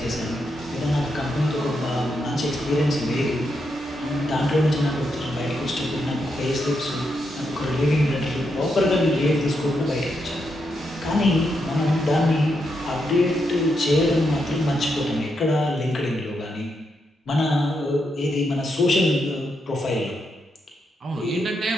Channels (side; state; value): both; normal; correlation 0.82